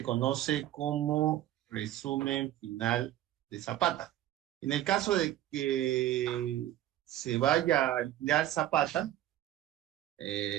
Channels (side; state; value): left; quieter; 13.3 dB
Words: conoce como resumen final de Zapata. En el caso de que se vaya a alquilar zapata,